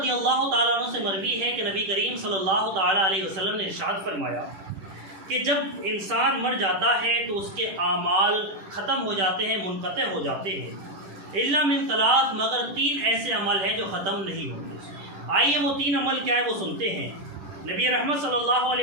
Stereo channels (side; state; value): left; late; 10 ms